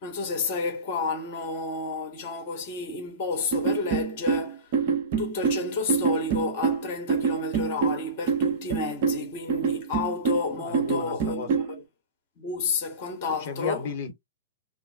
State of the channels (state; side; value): inverted; both; correlation -0.30